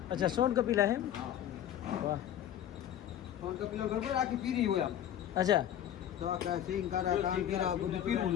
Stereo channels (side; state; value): right; quieter; 10.9 dB